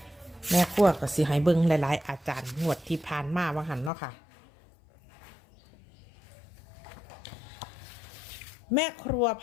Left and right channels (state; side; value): drops out; right; at 3.9 s